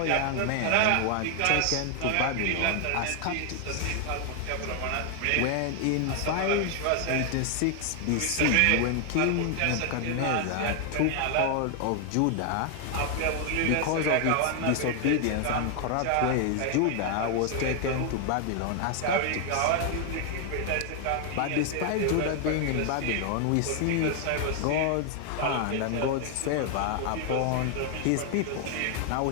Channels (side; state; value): both; different; correlation 0.00